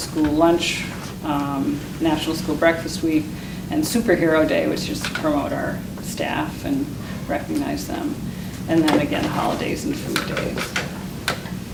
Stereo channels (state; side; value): identical; both; correlation 1.00